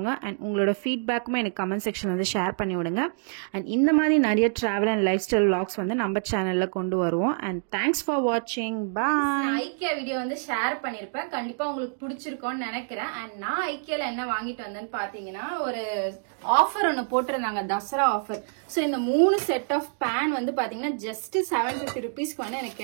அண்ட் உங்களோட ஃபீட்பேக்குமே எனக்கு கமெண்ட் செக்ஷன் வந்து ஷேர் பண்ணி விடுங்க. அண்ட் இந்த மாதிரி நிறைய travel and life style vlogs வந்து நம்ம சேனலில் கொண்டு வருவோம். அண்ட் தேங்க்ஸ் ஃபார் வாட்சிங். பாய். ஐக்கியா வீடியோ வந்து ஷேர் பண்ணிருப்பேன். கண்டிப்பா உங்களுக்கு பிடிச்சிருக்கும் நினைக்கிறேன். அண்ட் நான் ஐக்கியால என்ன வாங்கிட்டு வந்தேன்னு பாத்தீங்கன்னா ஒரு ஆஃபர் ஒன்னு போட்டிருந்தாங்க, தசரா ஆஃபர். சோ இந்த 3 செட் ஆஃப் பேன் வந்து பாத்தீங்கன்னா ஜஸ்ட் 750 ருபீஸ்க்கு வந்து எனக்கு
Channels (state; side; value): silent; left; digital silence